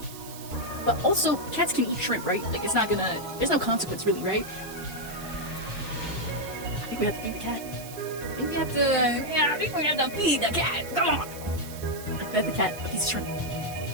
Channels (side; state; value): right; noise; hiss, 14 dB below the sound